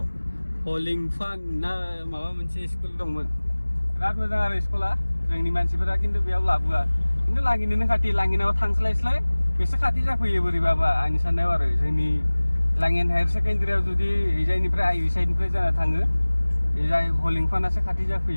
हलिंफान ना माबा मोनसे स्कुल दंमोन बिराद मोजां आरो स्कुला जोंनि मानसिफोरा खिन्थु बेयाव लाबोआ खिन्थु लांगिनोनो खाथि लांगिनाव थांस्लायस्लाय बेसे खाथि जाफैयो बोरैबाबा आंनि साननायाव आरो जोंनि लांगिन हायार सेकेन्डारियाव जुदि एजायनिफ्राय आइ साइडनिफ्राय जाना थाङो एजाय हलिंफानासो खाथि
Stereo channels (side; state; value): both; inverted; correlation -1.00